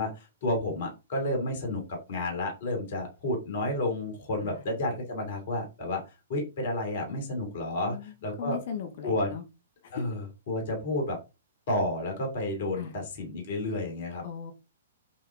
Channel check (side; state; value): both; inverted; correlation -0.37